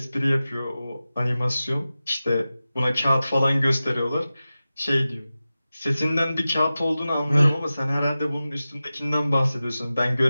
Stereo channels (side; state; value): both; inverted; correlation -0.95